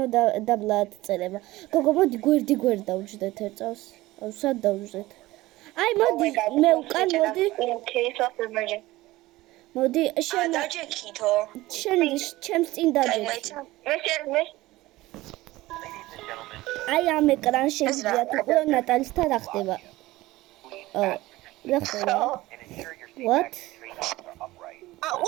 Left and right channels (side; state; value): left; quieter; 18.3 dB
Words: დაბლად წერება გოგო მოდი გვერდი დავუჯდეთ ერთ წელს აუ სად დავუჯდეთ აი მოდი მე უკან მოდი შენ დაჯექითო შენ ჩემს წინ დაჯექი აი ამ ეკრანს შეგიძლია თუ ნატალისთან რა ხდება რა ხდება what